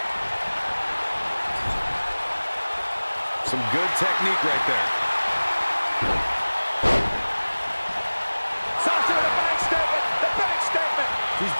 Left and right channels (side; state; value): both; inverted; correlation -1.00